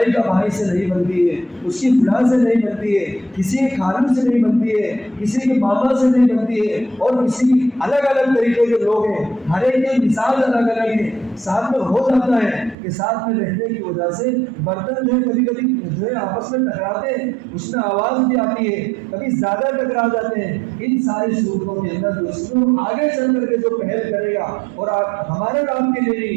کا بھائی سے نہیں بنتی ہے, اس کی فلاں سے نہیں بنتی ہے, کسی کے خالو سے نہیں بنتی ہے, کسی کے ماما سے نہیں بنتی ہے, اور کسی الگ الگ طریقے کے لوگ ہیں, ہر ایک کے مثال الگ الگ ہیں. ساتھ میں ہو جاتا ہے کہ ساتھ میں رہنے کی وجہ سے برتن جو ہے کبھی کبھی جو ہے آپس میں ٹکراتے ہیں, اس میں آواز بھی آتی ہے, کبھی زیادہ ٹکرا جاتے ہیں. ان ساری صورتوں کے اندر دوستوں آگے چل کر کے جو پہل کرے گا اور ہمارے نام کے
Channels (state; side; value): drops out; left; at 12.8 s